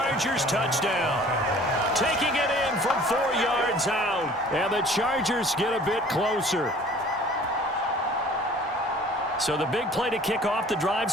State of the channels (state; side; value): normal; both; correlation 0.49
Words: touchdown. Taking it in from 4 yards out. And the Chargers get a bit closer. So the big play to kick off the drive